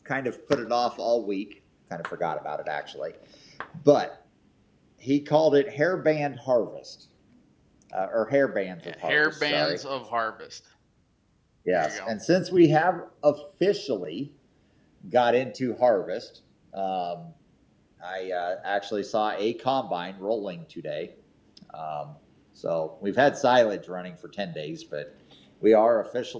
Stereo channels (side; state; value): both; identical; correlation 1.00